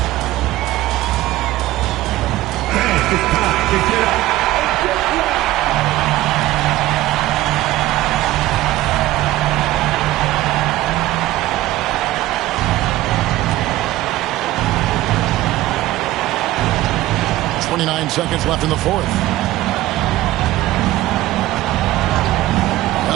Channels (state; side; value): quieter; left; 16.2 dB